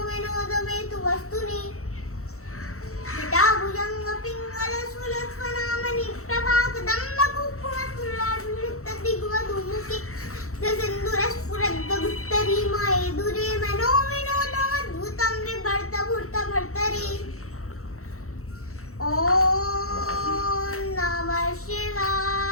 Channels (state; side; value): late; right; 0.64 ms